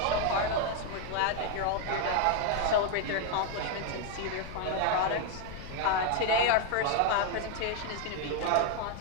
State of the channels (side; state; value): both; different; correlation 0.01